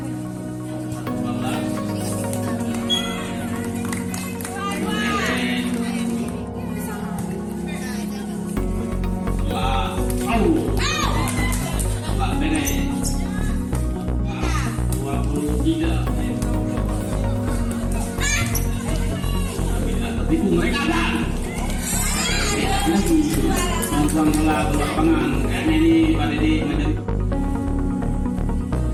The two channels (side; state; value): both; identical; correlation 1.00